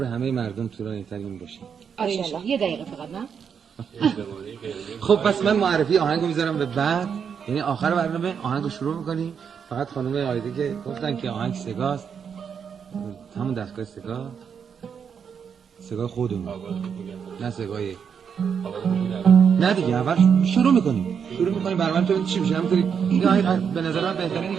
همه مردم طولانی‌ترین باشه. آره یه دقیقه فقط نه. خب پس من معرفی آهنگو میذارم به بعد، یعنی آخر برنامه آهنگو شروع میکنیم. فقط خانم آیده که گفتن که آهنگ سگاست، همون دستگاه سگاه خودمون نه سگاه نه دیگه. اول شروع میکنیم برنامه تو چی میشه. همونطوری این آهنگ به نظر من بهتره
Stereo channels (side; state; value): left; quieter; 7.1 dB